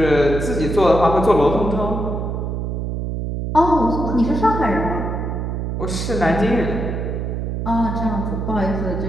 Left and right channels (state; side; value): noise; right; hum, 3 dB below the sound